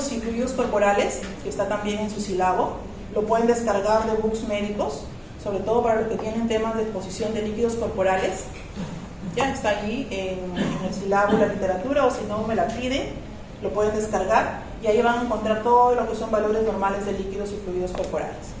y fluidos corporales, que está también en su sílabo. Lo pueden descargar de books médicos, sobre todo para los que tienen temas de exposición de líquidos corporales. Ya está allí en el sílabo de la literatura, o si no me la piden, lo pueden descargar y ahí van a encontrar todo lo que son valores normales de líquidos y fluidos corporales.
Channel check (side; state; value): both; identical; correlation 1.00